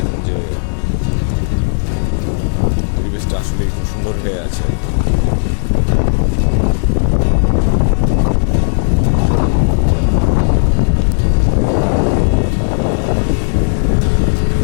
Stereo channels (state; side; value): silent; right; digital silence